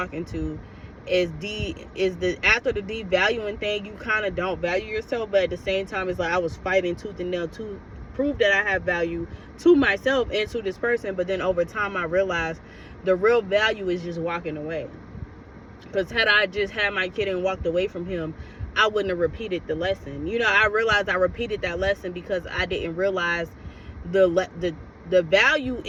into, is after the devaluing thing, you kind of don't value yourself, but at the same time, it's like I was fighting tooth and nail to prove that I have value to myself and to this person. But then over time, I realized the real value is just walking away. Because had I just had my kid and walked away from him, I wouldn't have repeated the lesson. You know, I realized I repeated that lesson because I didn't realize the value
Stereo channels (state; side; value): identical; both; correlation 1.00